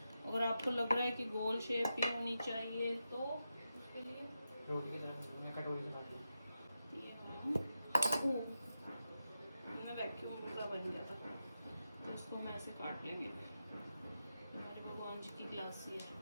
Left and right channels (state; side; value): inverted; both; correlation -0.89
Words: अगर आपको लग रहा है कि गोल शेप ही होनी चाहिए तो उसके लिए रोटी की तरह कटोरी से काट ये मैं वैक्यूम पूरा बन गया था, तो इसको हम ऐसे काट लेंगे। हमारे भगवान जी की ग्लासी है।